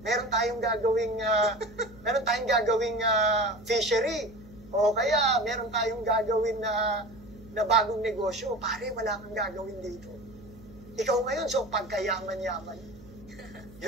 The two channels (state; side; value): noise; right; hum, 21 dB below the sound